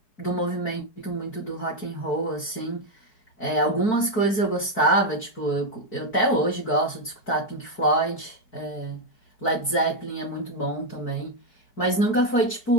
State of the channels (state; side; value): late; right; 4.6 ms